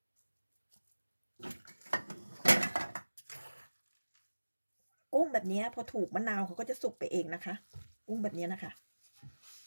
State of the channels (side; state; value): both; inverted; correlation -1.00